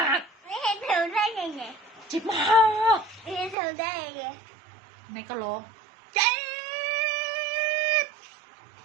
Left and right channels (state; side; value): drops out; left; at 3.6 s